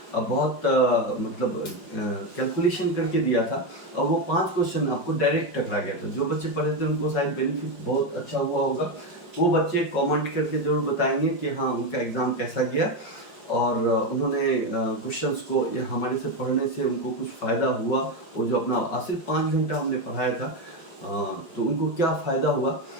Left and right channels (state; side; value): late; right; 5.3 ms